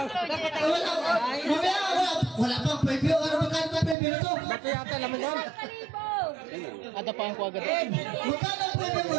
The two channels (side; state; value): left; drops out; at 4.0 s